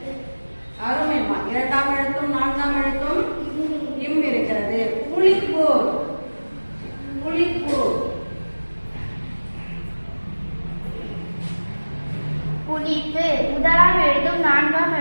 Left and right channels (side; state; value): both; inverted; correlation -1.00